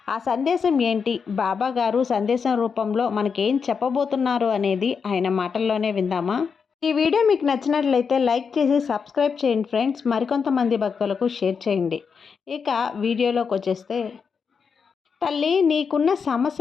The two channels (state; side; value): quieter; right; 5.9 dB